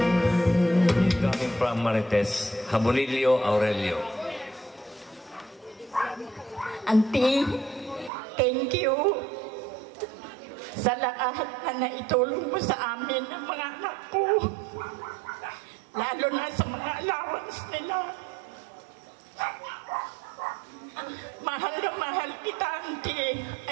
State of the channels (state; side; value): drops out; left; at 8.1 s